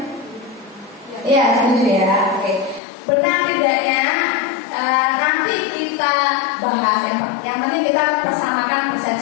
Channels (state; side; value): drops out; right; at 2.8 s